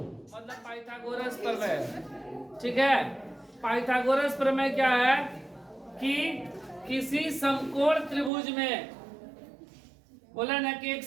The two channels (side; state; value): left; drops out; at 8.3 s